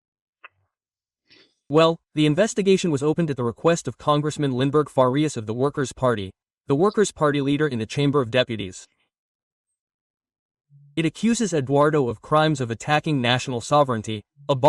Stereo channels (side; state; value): both; identical; correlation 1.00